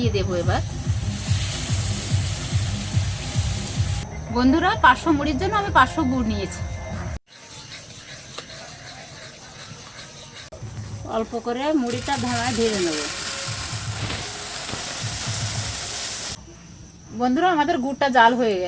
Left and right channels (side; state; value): both; identical; correlation 1.00